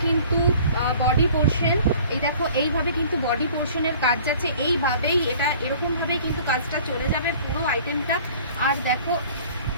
কিন্তু বডি পোর্শন, এই দেখো এইভাবে কিন্তু বডি পোর্শনের কাজ যাচ্ছে। এইভাবেই এটা এরকমভাবেই কিন্তু কাজটা চলে যাবে পুরো আইটেমটা। আর দেখো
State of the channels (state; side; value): inverted; both; correlation -0.49